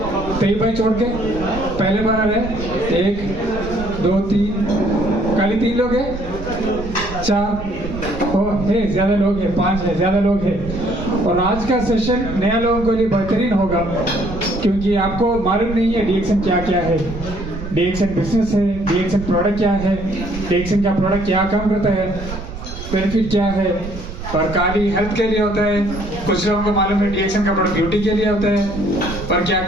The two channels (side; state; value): right; noise; rumble, 10 dB below the sound